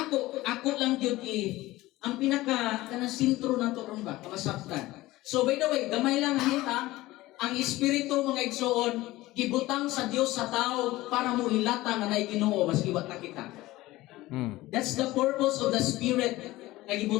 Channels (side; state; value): right; quieter; 18.0 dB